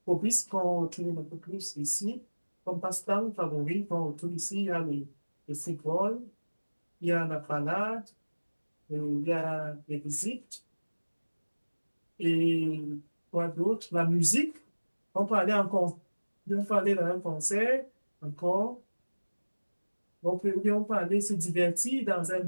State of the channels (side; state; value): both; inverted; correlation -1.00